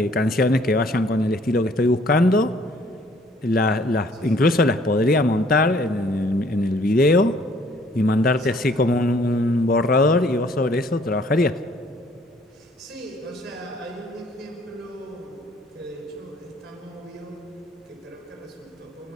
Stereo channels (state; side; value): normal; both; correlation 0.60